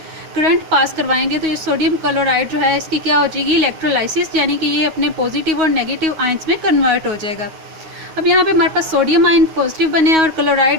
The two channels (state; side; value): late; left; 9.4 ms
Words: करंट पास करवाएंगे तो ये सोडियम क्लोराइड जो है इसकी क्या हो जाएगी, इलेक्ट्रोलाइसिस, यानी कि ये अपने पॉजिटिव और नेगेटिव आयंस में कन्वर्ट हो जाएगा। अब यहाँ पे हमारे पास सोडियम आयन पॉजिटिव बने हैं और